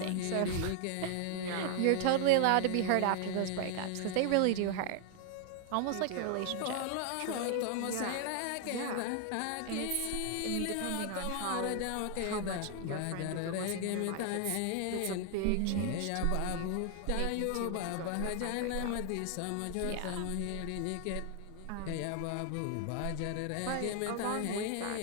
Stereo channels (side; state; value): both; different; correlation 0.00